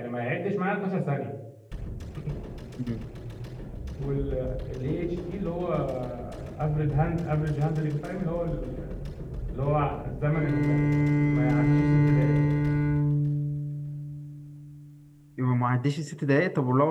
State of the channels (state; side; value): identical; both; correlation 1.00